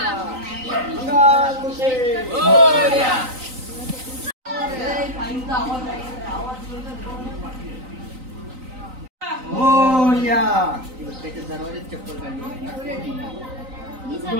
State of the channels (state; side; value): late; left; 3.9 ms